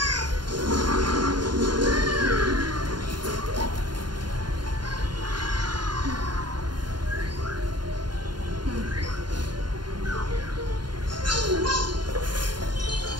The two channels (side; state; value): left; late; 0.71 ms